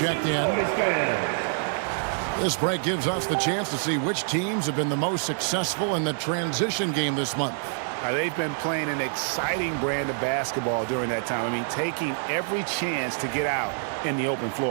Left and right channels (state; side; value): silent; left; digital silence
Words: in. This break gives us the chance to see which teams have been the most successful in the transition game this month. They've been playing an exciting brand of basketball during that time. I mean, taking every chance to get out in the open